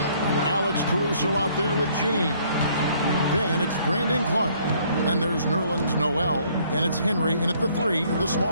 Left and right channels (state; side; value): inverted; both; correlation -0.63